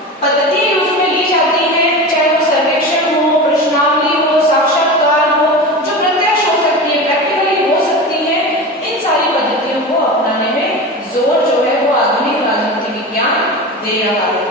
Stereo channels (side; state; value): both; normal; correlation 0.28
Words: दे रहा है।